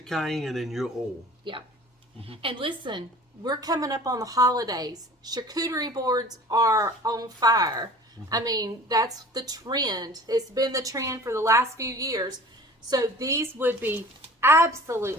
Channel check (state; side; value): normal; both; correlation 0.44